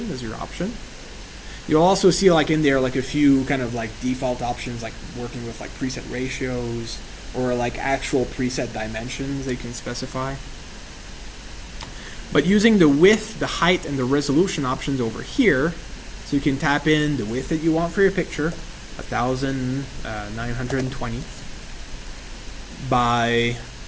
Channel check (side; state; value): both; identical; correlation 1.00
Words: as your option. You'll also see like in there like a few kind of like default options, like working with like preset ratios or like actual preset dimensions that you can specify. But using the width, the height, and the resolution options over here, so you can tap in the width that you want for your picture, 1920 by